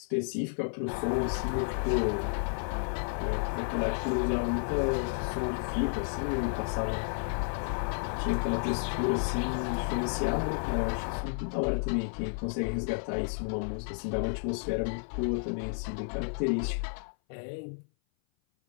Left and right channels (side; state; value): right; silent; 56 dB below the other